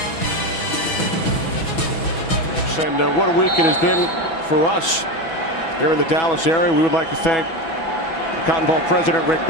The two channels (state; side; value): late; right; 6.1 ms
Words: And what a week it has been for us here in the Dallas area. We would like to thank the Cotton Bowl president Rick